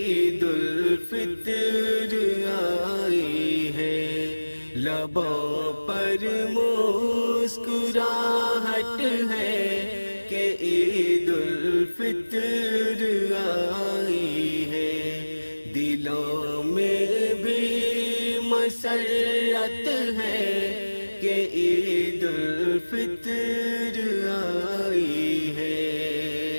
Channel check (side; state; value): both; inverted; correlation -1.00